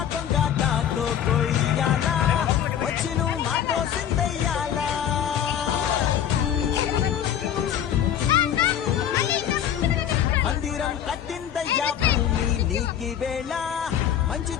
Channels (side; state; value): right; quieter; 9.7 dB